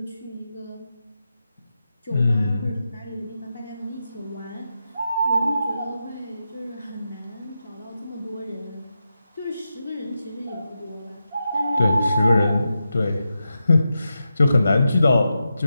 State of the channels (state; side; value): inverted; both; correlation -0.89